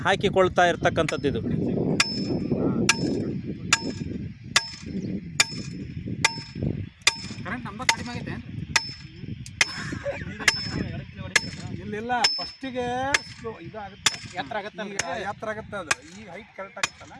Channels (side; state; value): both; identical; correlation 1.00